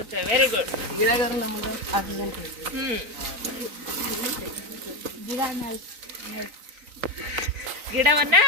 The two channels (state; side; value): late; left; 3.9 ms